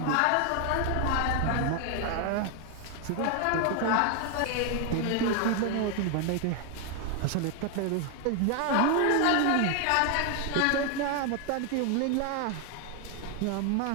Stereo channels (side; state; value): both; different; correlation 0.01